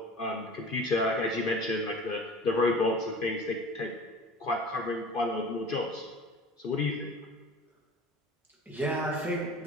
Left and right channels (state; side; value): normal; both; correlation 0.41